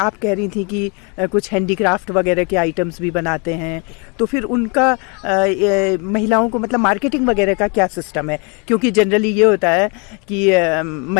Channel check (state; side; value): quieter; right; 33.1 dB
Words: कह रही थी कि कुछ हैंडीक्राफ्ट वगैरह के आइटम्स भी बनाते हैं, तो फिर उनका महिलाओं को मतलब मार्केटिंग वगैरह का क्या सिस्टम है? क्योंकि जनरली ये होता है कि